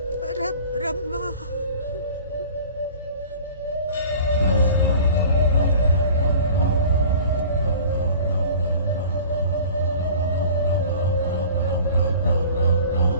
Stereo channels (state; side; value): inverted; both; correlation -0.43